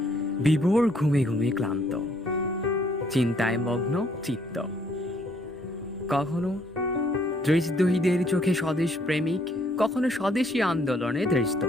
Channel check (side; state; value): both; normal; correlation 0.66